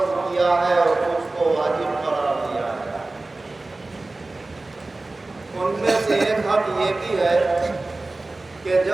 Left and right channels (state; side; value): quieter; left; 3.1 dB